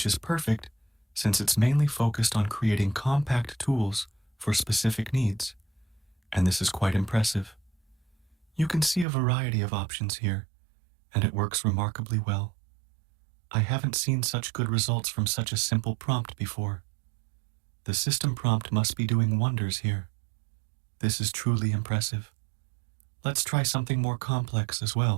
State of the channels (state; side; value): drops out; left; at 9.1 s